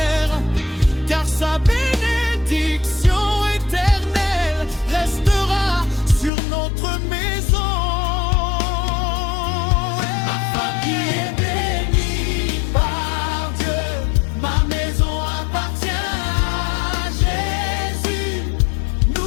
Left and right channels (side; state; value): right; drops out; at 6.3 s